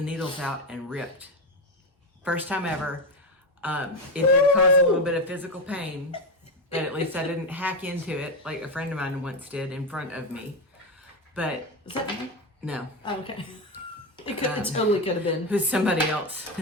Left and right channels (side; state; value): both; normal; correlation 0.13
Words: needles out and ripped. First time ever. It did cause a little bit of physical pain, but at least I didn't hack into it like a friend of mine once did in front of me. But Is that me? no. Oh, okay. It totally could have been. It was somebody else.